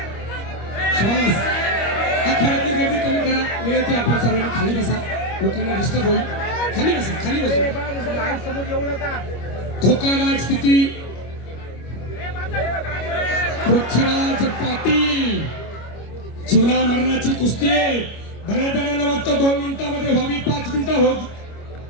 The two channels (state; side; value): late; right; 25 ms